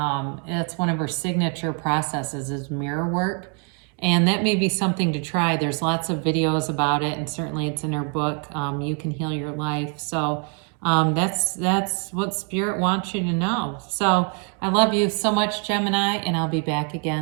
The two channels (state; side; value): quieter; left; 39.2 dB